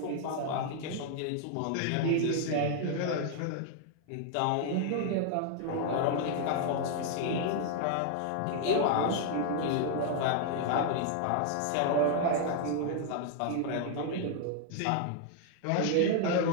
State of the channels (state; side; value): different; both; correlation 0.00